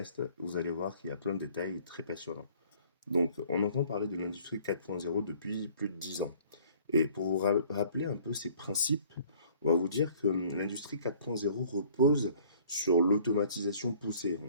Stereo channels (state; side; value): inverted; both; correlation -0.55